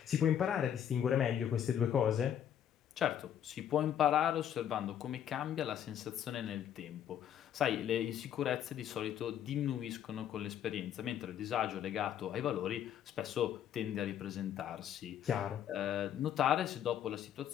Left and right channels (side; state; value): right; quieter; 9.8 dB